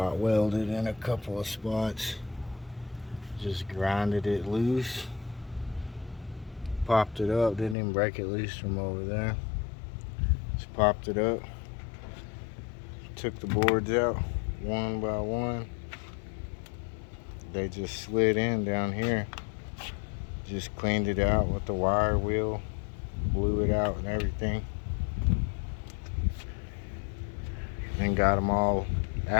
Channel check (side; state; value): right; drops out; at 7.8 s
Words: welded in a couple of spots. Just grinded it loose. Popped it up, didn't even break it loose from over there. Just popped it up. Took the boards out one by one. They just slid in down here. Just cleaned it out with the wire wheel, blew it out and everything. And got them all